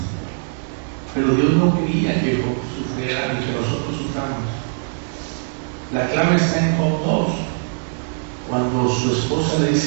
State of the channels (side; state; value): left; silent; digital silence